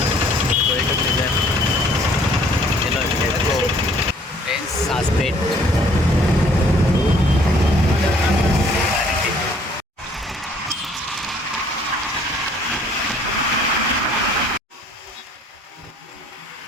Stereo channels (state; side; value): normal; both; correlation 0.59